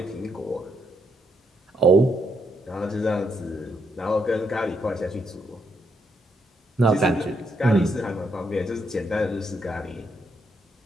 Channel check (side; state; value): both; normal; correlation 0.77